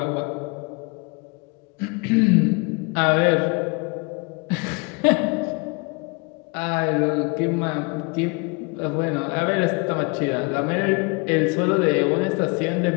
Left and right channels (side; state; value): right; quieter; 30.0 dB